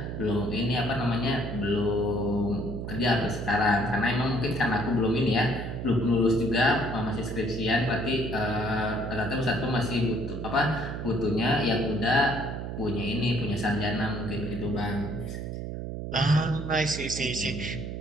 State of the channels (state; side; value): noise; right; hum, 5 dB below the sound